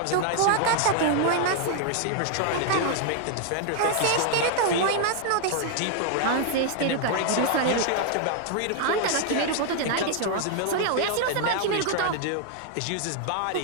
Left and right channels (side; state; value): both; different; correlation 0.00